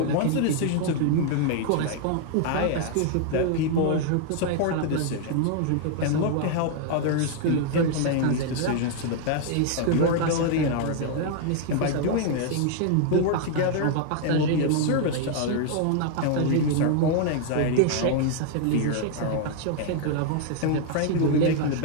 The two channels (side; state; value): both; different; correlation 0.00